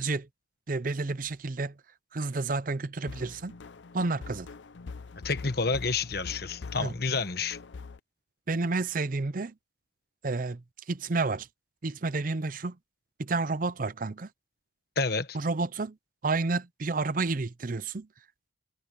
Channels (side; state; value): both; normal; correlation 0.35